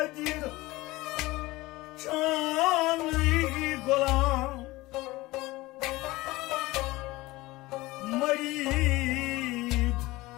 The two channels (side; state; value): right; quieter; 19.9 dB